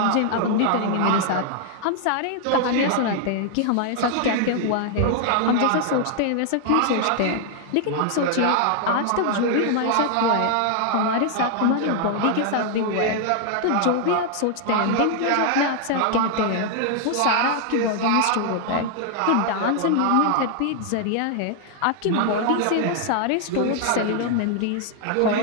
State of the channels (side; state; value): both; different; correlation 0.00